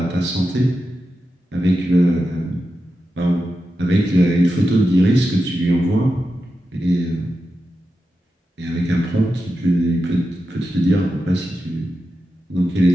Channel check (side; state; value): both; normal; correlation 0.90